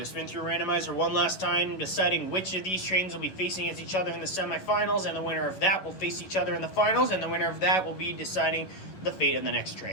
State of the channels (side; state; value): right; late; 11 ms